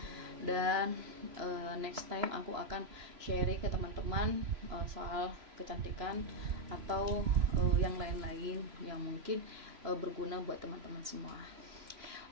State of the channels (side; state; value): left; late; 3.0 ms